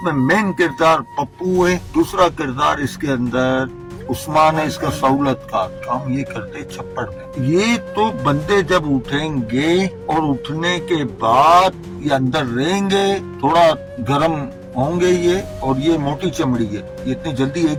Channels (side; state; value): both; identical; correlation 1.00